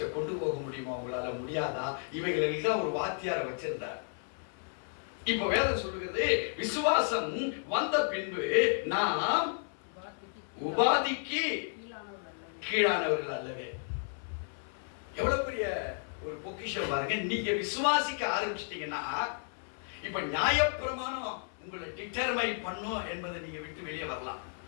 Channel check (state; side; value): silent; right; 56 dB below the other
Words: கொண்டு போக முடியுமா, உங்களால முடியாதா, இவைகளில் தான் ஒரு வாத்தியாரை வச்சிருந்தார். இப்ப வேதம் சொல்லுகிறது, விசுவாசம் வந்த பின்பு நாம் உபாதிக்கு கீழானவர்கள் அல்லவே. எவ்வளவு பெரிய ஒரு பொக்கிஷம் பாருங்க. நீங்க விசுவாசிக்க ஆரம்பிச்சிட்டீங்கன்னா இப்ப நியாயப்பிரமாணம் உங்களை டிட்டர்மைன் பண்ணும் என்பதை நீங்க விட்டு வெளியே வரலாம்.